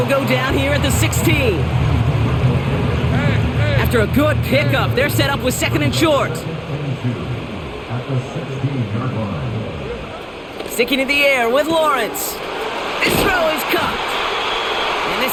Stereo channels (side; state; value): both; identical; correlation 1.00